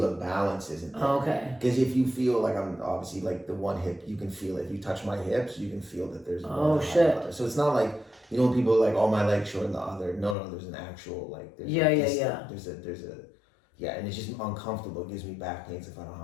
balance isn't there. Okay. Because if you feel like I'm obviously like the one hip, you can feel it. If you touch my hips, you can feel that there's one high shit. other. So it's not like, you know, people are like, oh, my leg's short than the other. No, there's an actual like. There's There's a and it's just uncomfortable. It gives me back pains if I don't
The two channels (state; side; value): drops out; right; at 10.4 s